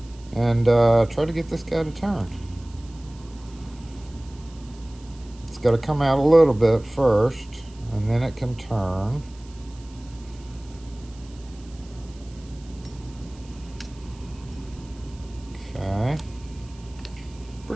and try to get this guy to turn. It's got to come out a little bit first, and then it can turn. Okay.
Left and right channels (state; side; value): noise; right; hiss, 25 dB below the sound